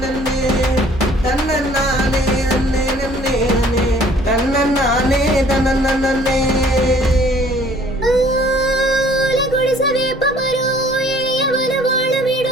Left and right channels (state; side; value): normal; both; correlation 0.55